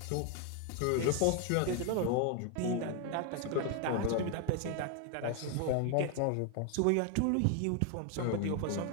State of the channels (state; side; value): different; both; correlation 0.00